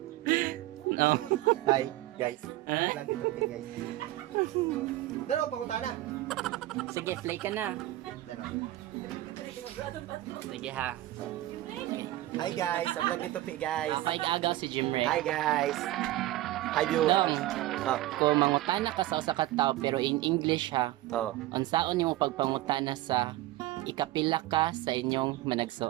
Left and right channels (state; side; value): quieter; left; 16.2 dB